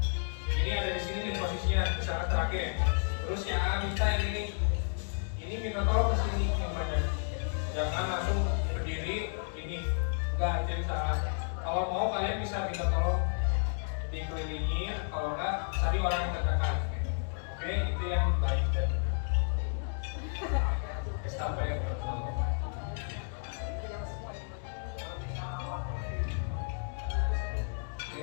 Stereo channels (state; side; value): silent; right; digital silence